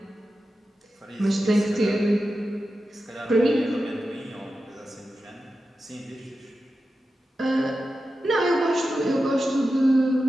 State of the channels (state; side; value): normal; both; correlation 0.91